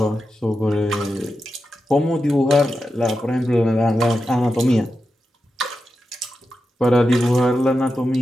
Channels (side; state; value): both; normal; correlation 0.90